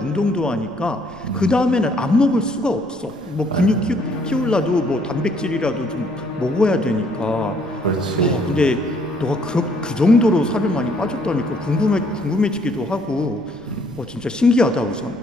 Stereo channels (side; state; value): left; noise; rumble, 27 dB below the sound